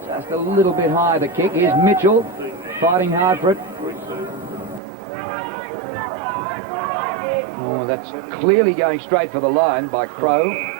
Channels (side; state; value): left; drops out; at 4.8 s